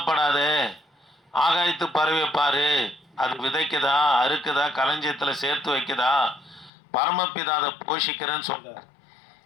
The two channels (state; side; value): drops out; right; at 6.7 s